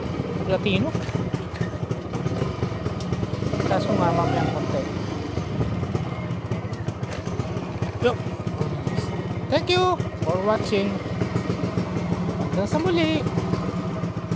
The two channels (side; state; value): both; identical; correlation 1.00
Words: Platino. Tapos sumama ko yung konti. Yo. Thank you for watching. Hanggang sa muli.